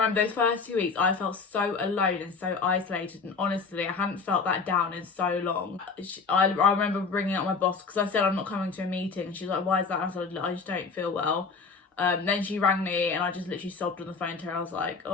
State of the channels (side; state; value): right; quieter; 4.8 dB